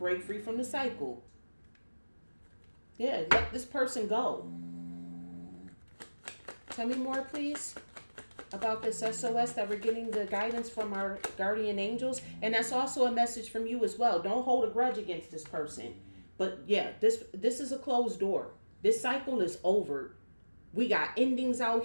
free from the cycle. Yeah, let this person go. Tell me more, please, about this SOS that we're getting the guidance from our guardian angels. And that's also a message from you as well. Don't hold a grudge against this person. But yeah, this is a closed door. This cycle is over. We got endings out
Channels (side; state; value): both; inverted; correlation -1.00